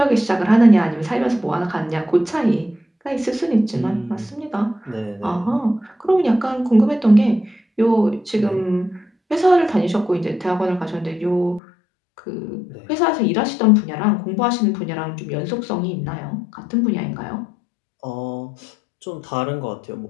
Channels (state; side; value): drops out; right; at 11.6 s